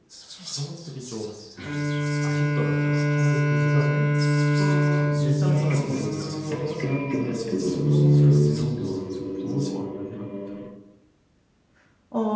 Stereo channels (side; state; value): both; identical; correlation 1.00